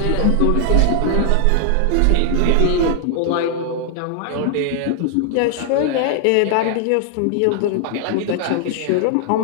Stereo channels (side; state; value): both; different; correlation 0.00